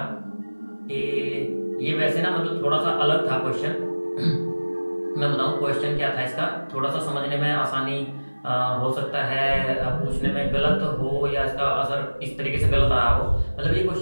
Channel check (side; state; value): both; inverted; correlation -1.00